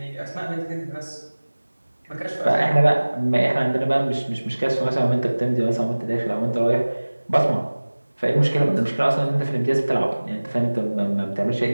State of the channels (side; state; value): both; inverted; correlation -1.00